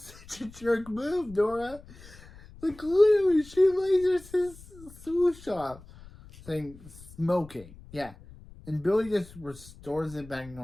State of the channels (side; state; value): left; noise; rumble, 20 dB below the sound